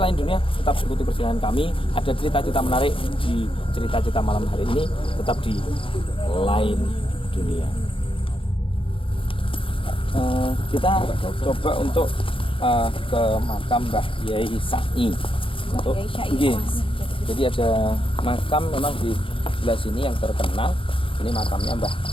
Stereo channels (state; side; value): late; right; 0.25 ms